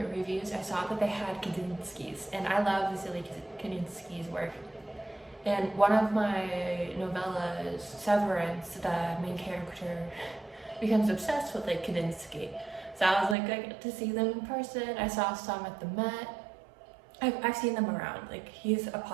reviews, I saw that they had Kandinsky's, and I love Vasily Kandinsky's work. And one of my novellas, Severance, the main character becomes obsessed with like Kandinsky. So I was like, I get to see them in person. I saw some at the Met. I've seen them around. Like, he's a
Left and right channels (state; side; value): drops out; left; at 13.4 s